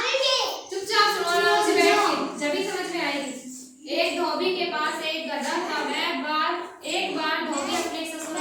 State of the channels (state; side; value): identical; both; correlation 1.00